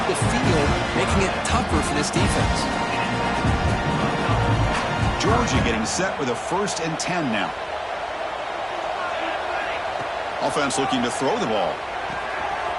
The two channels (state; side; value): identical; both; correlation 1.00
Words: the field, making it tougher for this defense. Georgia getting set with a 1st and 10 now. Offense looking to throw the ball.